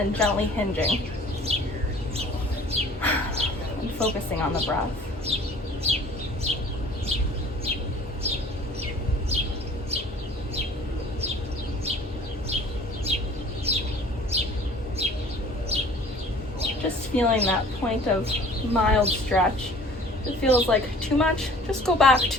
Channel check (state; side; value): normal; both; correlation 0.49